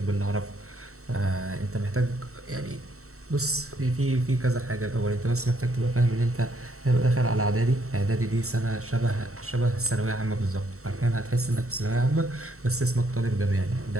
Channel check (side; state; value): left; late; 0.64 ms